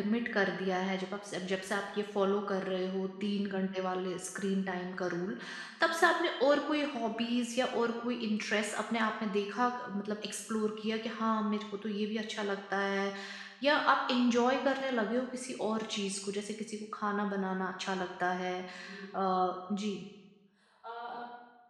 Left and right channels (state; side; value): identical; both; correlation 1.00